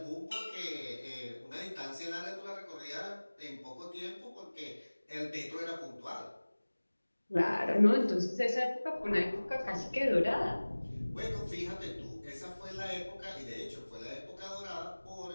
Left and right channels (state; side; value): inverted; both; correlation -1.00